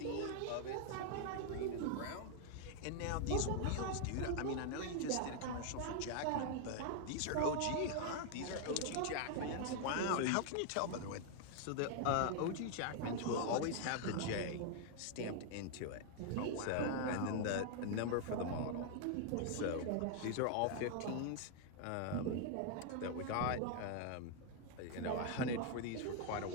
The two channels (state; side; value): different; both; correlation 0.00